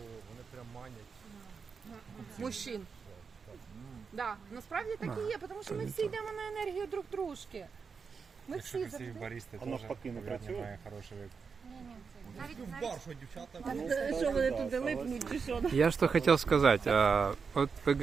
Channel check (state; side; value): quieter; left; 5.5 dB